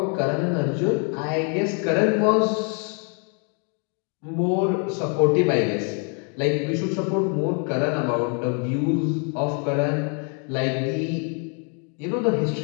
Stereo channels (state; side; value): quieter; right; 39.3 dB